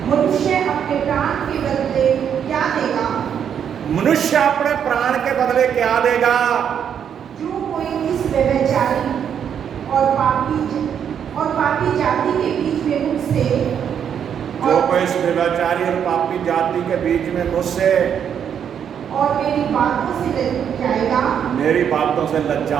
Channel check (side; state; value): left; quieter; 8.3 dB